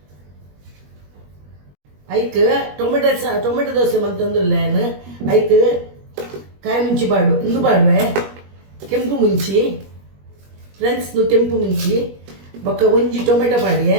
ಐಕ್ ಟೊಮೆಟೊ ದೋಸೆ ಬಂತಂದಿಲ್ಲ ಏನು ಐಕ್ ಕಾಯಿ ಮುಂಚಿ ಪಾಡು ಇಂದು ಪಾಡುವೆ ಕೆಂಪು ಮುಂಚಿ ಫ್ರೆಂಡ್ಸ್ ಕೆಂಪು ಮುಂಚಿ ಬೊಕ್ಕ ಒಂಜಿ ಟೊಮೆಟೊ ಪಾಡಿಯೆ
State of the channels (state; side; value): late; left; 21 ms